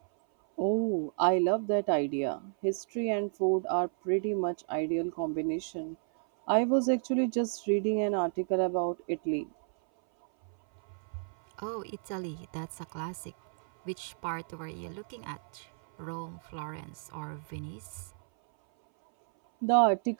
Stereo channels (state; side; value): silent; left; 57 dB below the other